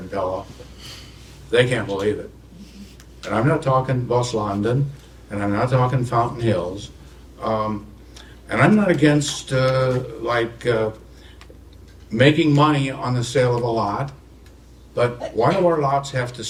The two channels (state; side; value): identical; both; correlation 1.00